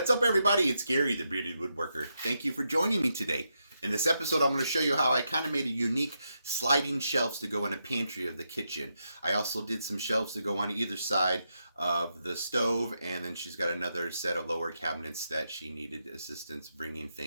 up, everybody? It's Gary, the Bearded Woodworker. Thank you for joining me today. In this episode, I'm going to show you how I kind of made a unique sliding shelves to go in a pantry of the kitchen. I also did some shelves to go on either side of the stove, and then she's got another set of lower cabinets that she needed assistance bringing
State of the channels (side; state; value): both; inverted; correlation -0.84